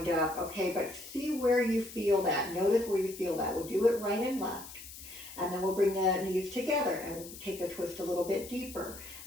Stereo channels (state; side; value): noise; left; hiss, 14 dB below the sound